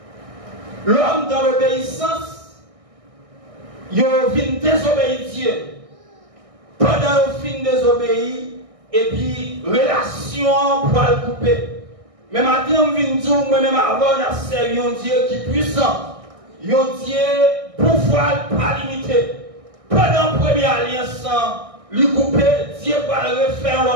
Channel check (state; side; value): late; left; 1.6 ms